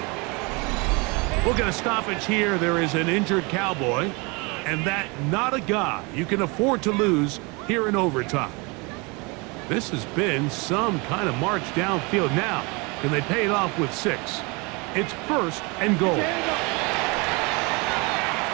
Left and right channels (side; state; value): left; quieter; 28.5 dB